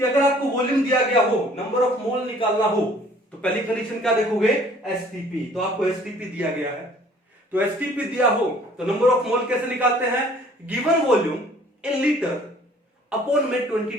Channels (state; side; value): normal; both; correlation 0.55